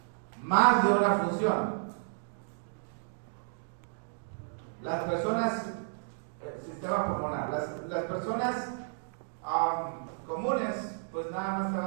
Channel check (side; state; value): left; silent; digital silence